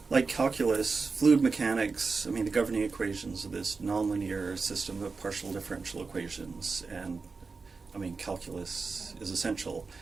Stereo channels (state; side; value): quieter; left; 4.4 dB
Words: like calculus, fluid mechanics, the governing equations of this nonlinear system of partial differential equations, and calculus is essential.